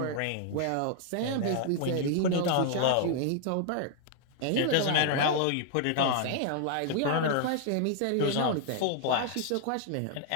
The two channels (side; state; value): both; different; correlation -0.01